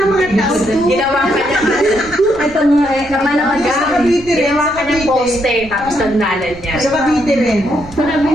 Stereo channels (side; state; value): right; noise; rumble, 19 dB below the sound